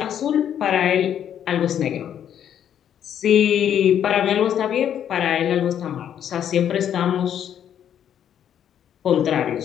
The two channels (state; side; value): quieter; right; 9.6 dB